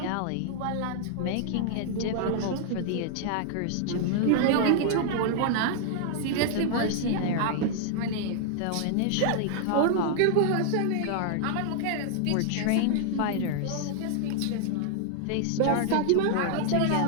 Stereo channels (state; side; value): different; both; correlation 0.00